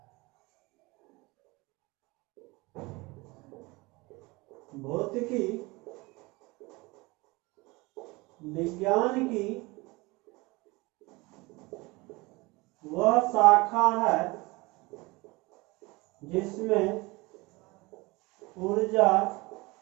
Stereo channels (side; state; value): left; quieter; 23.7 dB